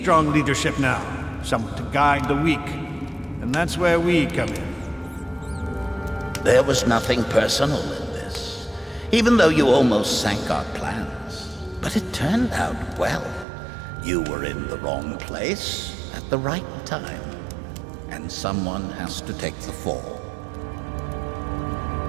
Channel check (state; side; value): drops out; left; at 13.5 s